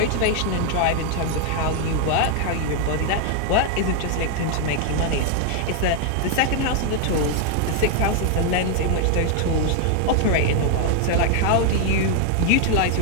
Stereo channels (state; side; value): different; both; correlation 0.00